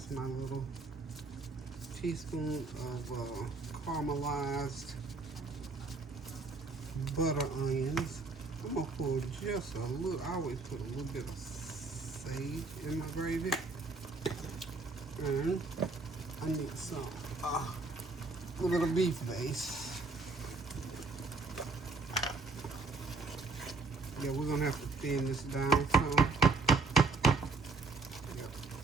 my little teaspoon of caramelized butter onions. I'm going to pour just a little, I always put a little bit of sage in my gravy. And I need some, a little bit of beef base. Yeah, we're gonna have to thin this down some. Yep.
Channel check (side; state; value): left; quieter; 3.8 dB